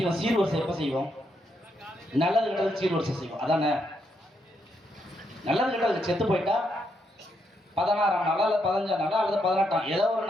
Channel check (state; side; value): normal; both; correlation 0.78